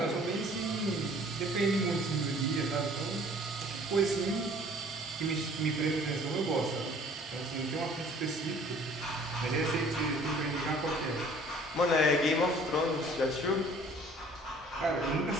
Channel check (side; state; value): both; normal; correlation 0.53